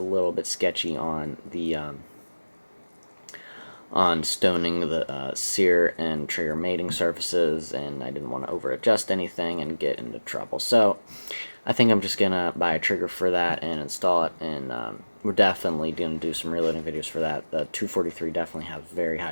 little bit sketchy on the on stoning the sear and trigger mating surfaces, and I didn't want to over adjust anything and get into trouble. So I think I'm just going to buy a trigger for that and install it, and we're definitely going to do some reloading videos for that. The 243 definitely has very high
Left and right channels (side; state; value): both; inverted; correlation -1.00